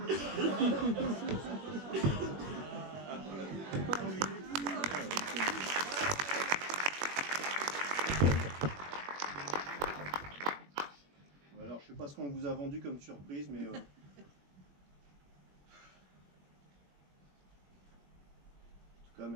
Alors, je sais pas ce qu'on vous a vendu comme surprise, mais... En tout cas,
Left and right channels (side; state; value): left; late; 21 ms